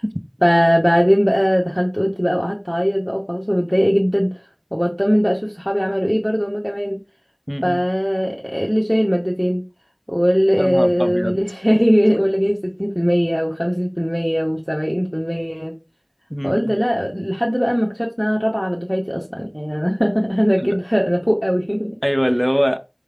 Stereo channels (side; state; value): both; identical; correlation 1.00